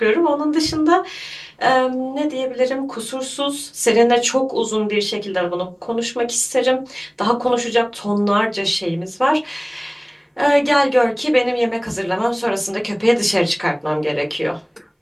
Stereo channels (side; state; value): both; identical; correlation 1.00